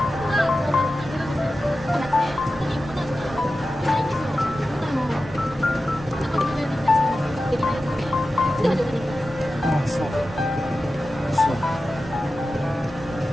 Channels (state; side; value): normal; both; correlation 0.93